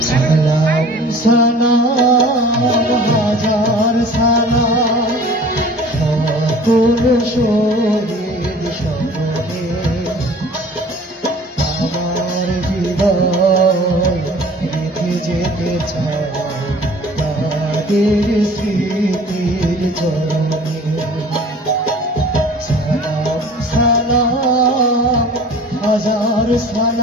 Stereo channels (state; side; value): normal; both; correlation 0.46